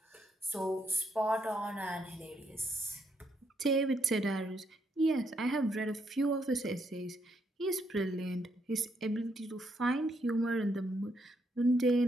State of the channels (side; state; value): both; normal; correlation 0.75